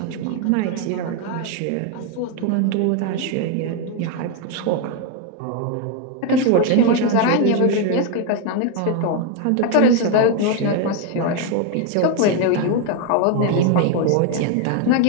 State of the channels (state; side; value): different; both; correlation 0.01